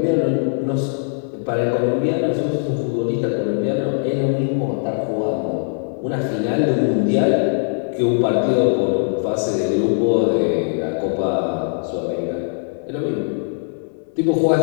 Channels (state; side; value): silent; right; digital silence